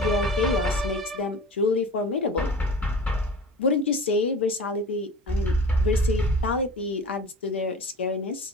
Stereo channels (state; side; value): normal; both; correlation 0.37